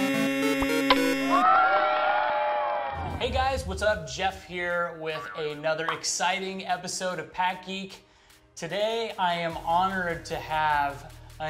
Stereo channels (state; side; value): identical; both; correlation 1.00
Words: guys, what's up? Jeff here with another exciting episode of PackGeek. Today I am honored to have